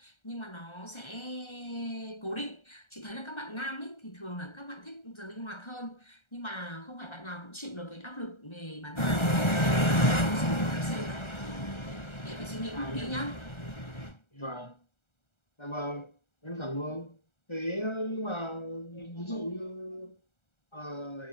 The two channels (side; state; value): right; late; 1.3 ms